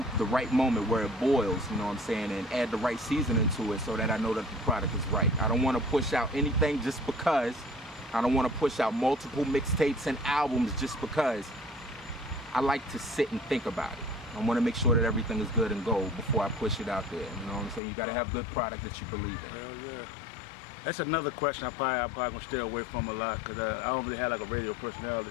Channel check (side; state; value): right; drops out; at 17.8 s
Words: moment where it boils, you know what I'm saying, and add the right seasoning to it so that I know that the product is right. I don't want to push out anything just because. I don't want to push out multiple mixtapes and albums just because. I like to sit and think about it. I want to make sure that everything is good and gold before I push it out there. You know what I'm saying? You got to have good product that you believe in. Hell yeah. That's another question I'm probably going to stay away from a lot because I don't really have like a radio personality.